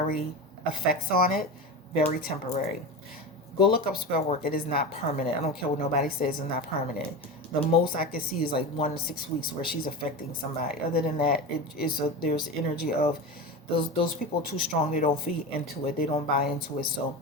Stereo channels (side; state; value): both; normal; correlation 0.24